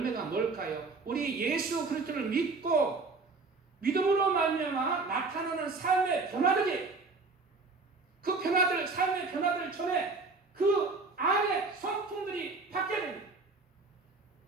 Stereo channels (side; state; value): left; quieter; 4.0 dB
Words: 뭘까요? 우리 예수 그리스도를 믿고 믿음으로 말미암아 나타나는 삶의 변화들이, 그 변화들, 삶의 변화들 전에 그 안에 성품들이 바뀌어야 됩니다.